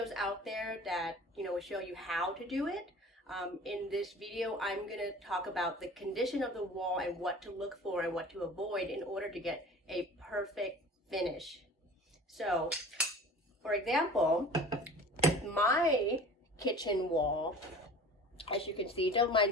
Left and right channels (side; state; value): both; normal; correlation 0.42